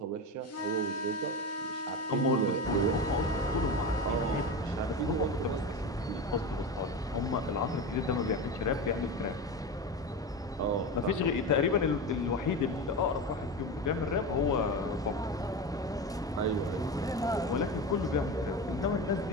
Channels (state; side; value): normal; both; correlation 0.23